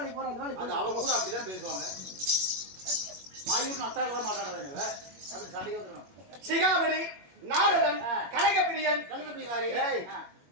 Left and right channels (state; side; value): late; left; 21 ms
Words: போற? அந்த வேலை அது அவங்க கூட அப்படிதான் பேசுவாங்க. மாயூர் நத்தால மாட்டாடாத அப்படி சண்டைக்கு வந்துருவாங்க. சிகாமணி, நாரதன், கலகப்பிரியன்,